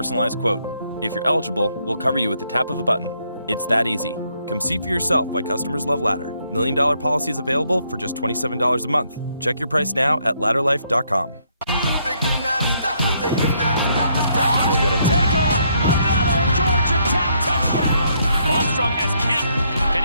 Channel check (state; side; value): inverted; both; correlation -0.72